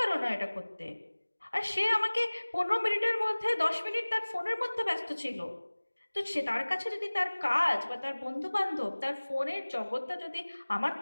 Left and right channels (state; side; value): inverted; both; correlation -1.00